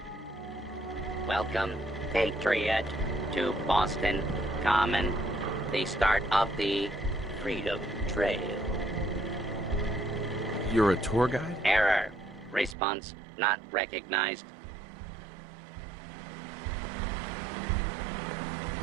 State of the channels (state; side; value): drops out; left; at 12.8 s